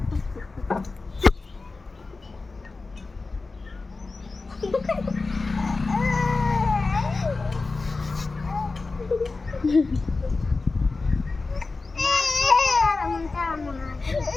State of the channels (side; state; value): right; quieter; 3.8 dB